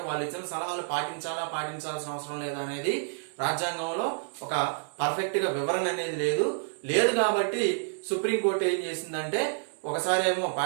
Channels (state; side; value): silent; left; 59 dB below the other